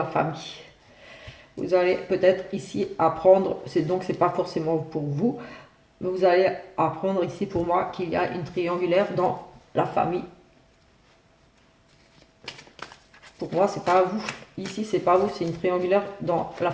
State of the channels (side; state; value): both; identical; correlation 1.00